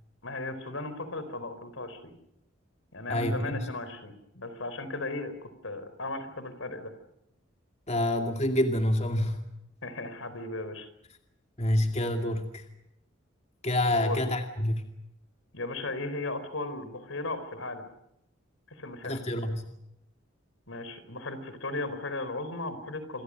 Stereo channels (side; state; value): both; normal; correlation 0.40